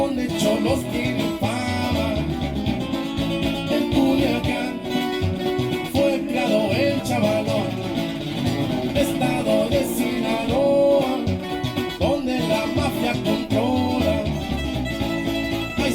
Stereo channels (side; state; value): both; identical; correlation 1.00